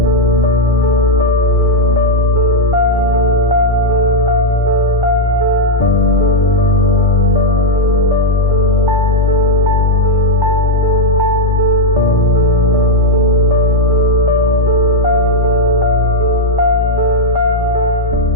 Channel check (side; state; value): both; normal; correlation 0.00